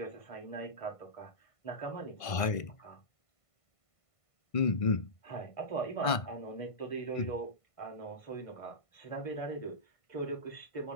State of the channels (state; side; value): late; right; 1.5 ms